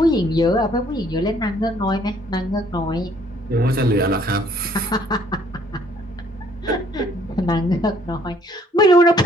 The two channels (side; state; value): both; normal; correlation 0.61